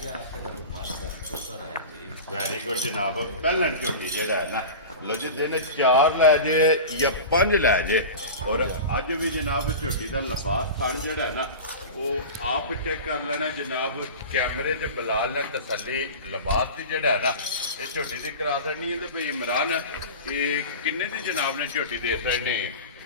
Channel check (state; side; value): inverted; both; correlation -0.31